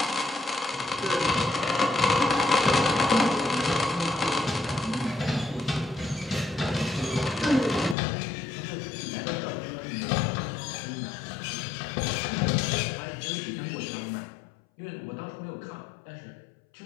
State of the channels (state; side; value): drops out; right; at 8.0 s